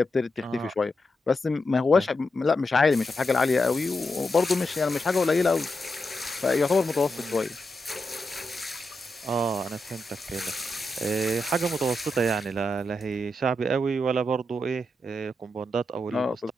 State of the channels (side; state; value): both; normal; correlation 0.86